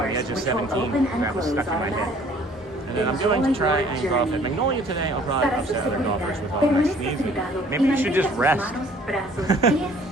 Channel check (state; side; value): normal; both; correlation 0.56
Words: The Edge of 17. That was stuck in my head. And then I'm going to try and golf at Magnolia today. I'll probably upset other golfers with all my sneezing. Maybe you should just rest.